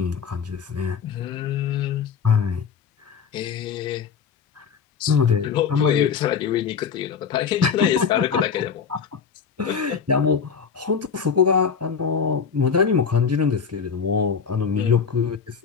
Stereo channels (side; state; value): right; quieter; 6.4 dB